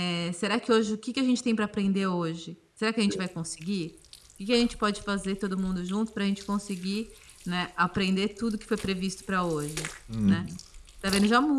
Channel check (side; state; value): both; identical; correlation 1.00